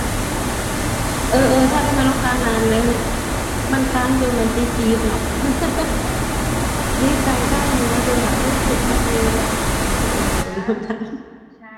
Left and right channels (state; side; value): identical; both; correlation 1.00